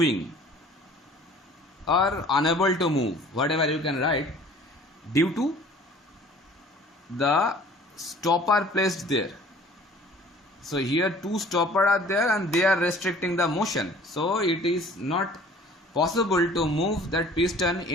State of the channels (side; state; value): both; normal; correlation 0.50